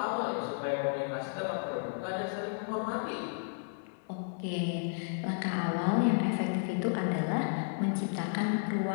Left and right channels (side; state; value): right; silent; digital silence